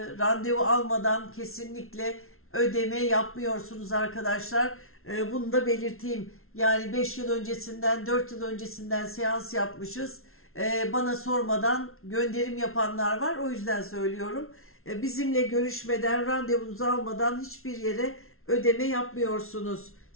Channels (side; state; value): right; late; 0.62 ms